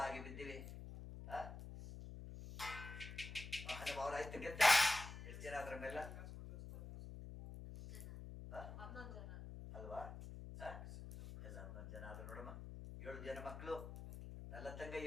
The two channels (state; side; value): noise; left; hum, 10 dB below the sound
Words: ಬಿದ್ದಿವೆ. ಮಹಾನುಭಾವರ ಆಯ್ತು ಗೆದ್ದ. ಎಷ್ಟು ಜನ ಅದ್ರ ಮೇಲೆ ಅಲ್ವಾ? ಎಲ್ಲ 11 ಜನ ಆದ್ರು ನೋಡಮ್ಮ. 7 ಜನ ಮಕ್ಕಳು. ನಲ್ಲತಂಗ